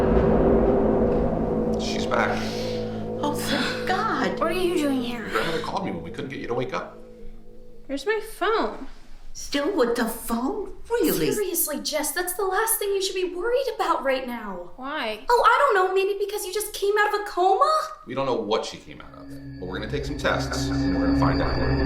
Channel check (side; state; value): both; identical; correlation 1.00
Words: She's back. Oh, thank God. What are you doing here? Your grandmother called me when we couldn't get you to wake up. Where's my phone? Still with the phone? Really? Seriously, Jess, that's the last thing you should be worried about right now. Why? Oh, I don't know, maybe because you just came out of a coma? We don't know what she came out of, but we're going to take some tests, and we're going to find out.